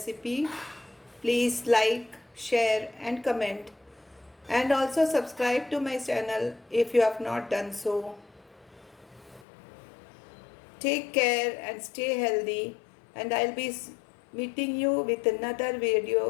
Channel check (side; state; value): right; drops out; at 9.5 s